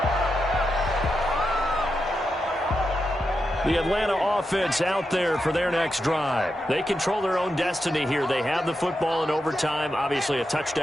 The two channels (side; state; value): both; normal; correlation 0.87